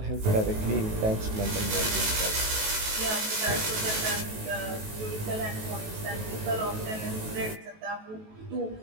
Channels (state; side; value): late; left; 19 ms